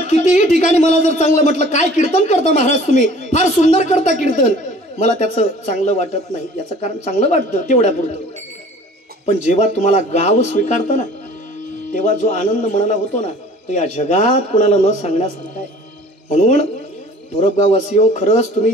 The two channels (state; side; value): normal; both; correlation 0.49